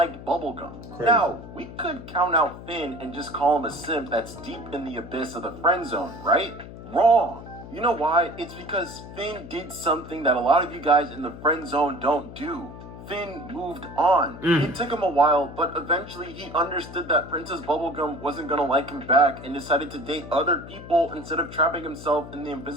Bubblegum. Crazy. Now, we could count out Finn and just call him a simp that's deep in the abyss of the friend zone, right? Wrong. You know why? It's because Finn did something that a lot of you guys in the friend zone don't do. Finn moved on. It took him a while, but eventually he understood that Princess Bubblegum wasn't gonna like him back and decided to date other people instead of trapping himself in the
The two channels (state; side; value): noise; left; hum, 14 dB below the sound